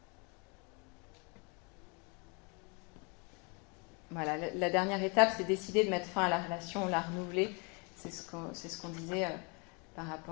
Voilà, la dernière étape, c'est décider de mettre fin à la relation, la renouveler. C'est ce qu'on disait par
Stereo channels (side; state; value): right; quieter; 32.4 dB